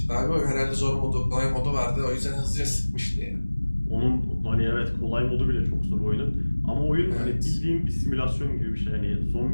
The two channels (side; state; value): both; inverted; correlation -1.00